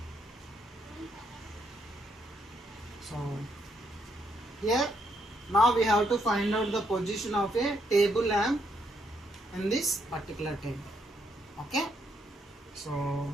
So here now we have to find out the position of a table lamp in this particular table. Okay,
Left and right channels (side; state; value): both; normal; correlation 0.75